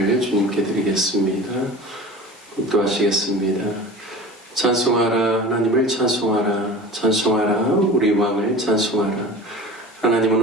주님께 드리겠습니다. 묵도하시겠습니다. 찬송하라 하나님을 찬송하라 찬송하라 우리 왕을 찬송하라. 하나님은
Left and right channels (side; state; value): both; normal; correlation 0.37